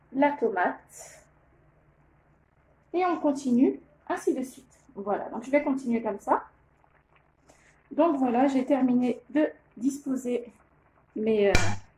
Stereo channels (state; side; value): identical; both; correlation 1.00